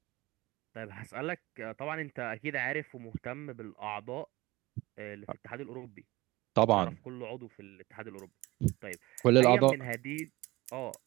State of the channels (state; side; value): quieter; left; 20.5 dB